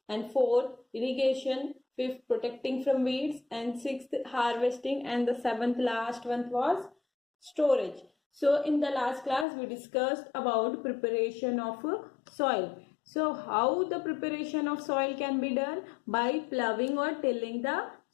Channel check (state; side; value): drops out; right; at 9.5 s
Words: and fourth irrigation, fifth protecting from weeds, and sixth harvesting, and the seventh last one was storage. So in the last class we discussed about preparation of soil. So how the preparation of soil can be done? By ploughing or tilling the